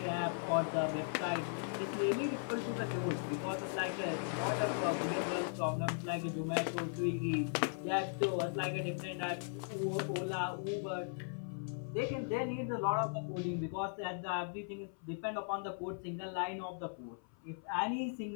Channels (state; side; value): silent; right; 52 dB below the other